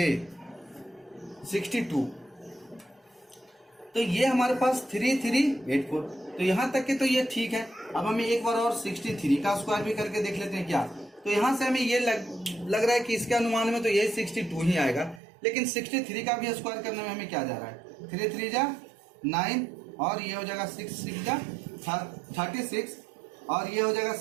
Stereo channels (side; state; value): left; drops out; at 15.2 s